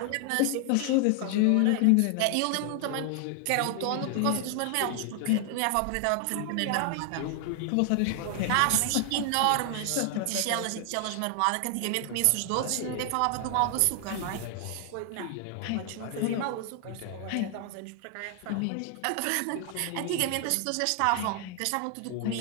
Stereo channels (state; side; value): different; both; correlation 0.00